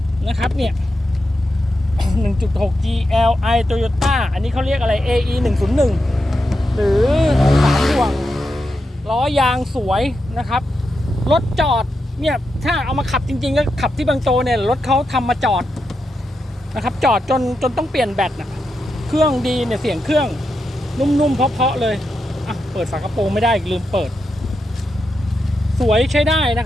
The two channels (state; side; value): normal; both; correlation 0.86